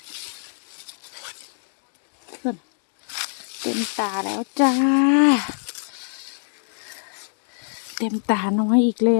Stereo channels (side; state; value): right; silent; digital silence